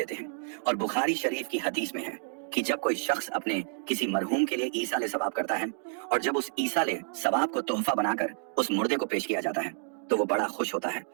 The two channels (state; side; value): silent; left; digital silence